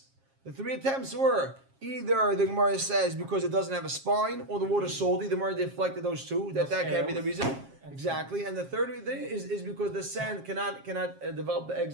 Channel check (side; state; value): left; late; 7.4 ms